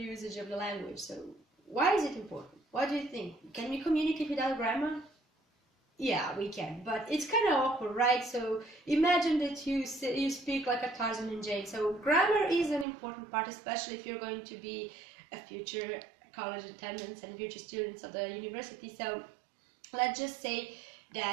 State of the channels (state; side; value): drops out; left; at 12.9 s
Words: of the language? So why is it important? What do you think? Can we communicate without grammar? Yeah, we can, but it's kind of awkward, right? So imagine that you speak like a Tarzan and Jane. So grammar is an important part, especially if you're going to be a future college attendants and future students of the university. So let's just say